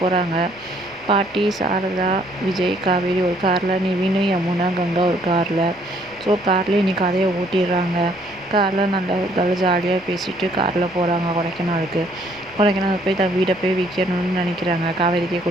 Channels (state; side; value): noise; left; rumble, 28 dB below the sound